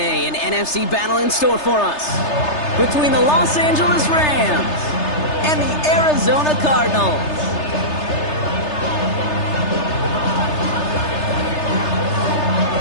an NFC battle in store for us between the Los Angeles Rams and the Arizona Cardinals.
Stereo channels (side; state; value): right; late; 3.3 ms